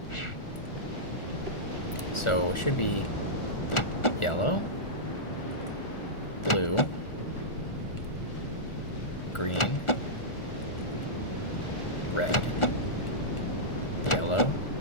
So, it should be yellow, blue, green, red, yellow,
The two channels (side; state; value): right; late; 1.4 ms